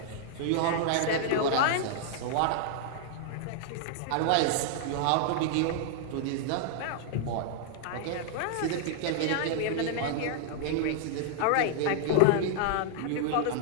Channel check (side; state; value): both; different; correlation -0.01